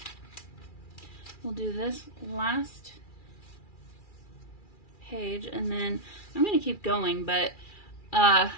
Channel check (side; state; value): right; late; 2.4 ms